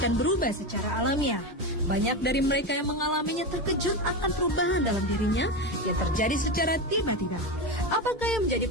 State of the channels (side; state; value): both; normal; correlation 0.17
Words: berubah secara alamiah. Banyak dari mereka yang mengalaminya terkejut akan perubahan dalam dirinya yang terjadi secara tiba-tiba. Apakah yang menjadi